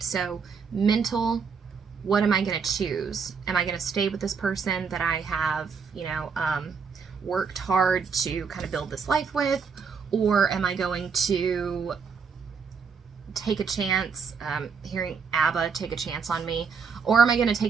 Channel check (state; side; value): quieter; left; 5.7 dB